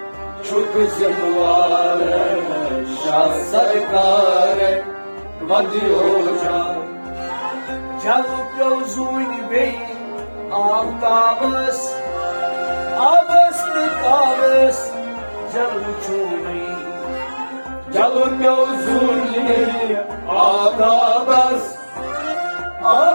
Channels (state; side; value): inverted; both; correlation -1.00